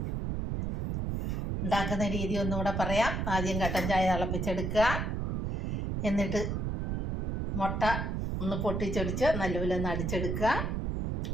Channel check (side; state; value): right; noise; rumble, 1 dB below the sound